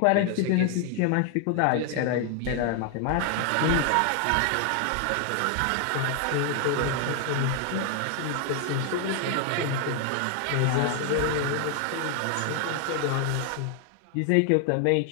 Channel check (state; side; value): different; both; correlation 0.00